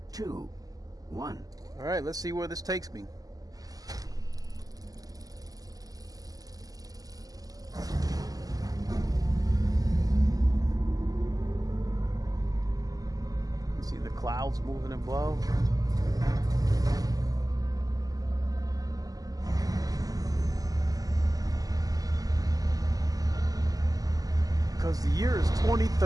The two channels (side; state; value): left; late; 0.17 ms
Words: 2, 1. All right, let's see where this takes me. See the clouds moving above. Because the year is